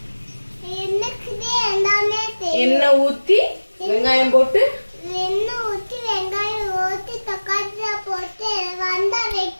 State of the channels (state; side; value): inverted; both; correlation -1.00